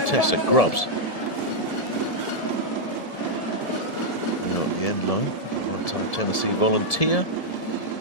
Tessa Grubbs. Now at the end line, one-time Tennessee volunteer.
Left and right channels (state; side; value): late; right; 1.7 ms